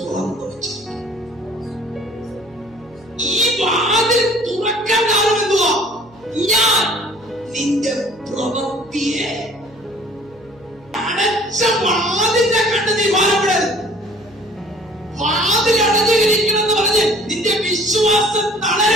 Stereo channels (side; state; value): right; noise; hum, 26 dB below the sound